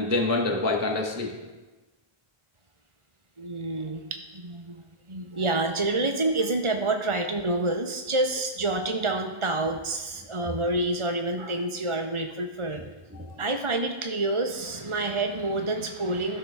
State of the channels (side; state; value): left; late; 1.4 ms